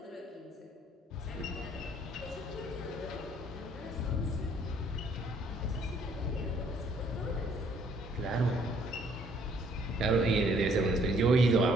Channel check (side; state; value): both; normal; correlation 0.63